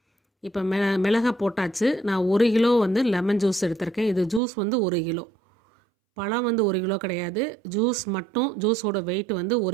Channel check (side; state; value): left; drops out; at 4.4 s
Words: இப்போ மிளகை போட்டாச்சு. நான் 1 கிலோ லெமன் ஜூஸ் எடுத்திருக்கேன். இது ஜூஸ் 1 கிலோ. பழம் 1 கிலோ கிடையாது. ஜூஸ் மட்டும், ஜூஸோட வெயிட்